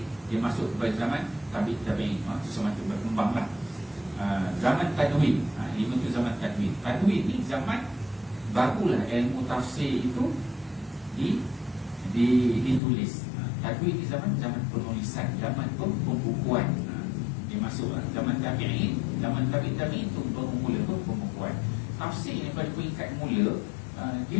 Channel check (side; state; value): right; drops out; at 12.8 s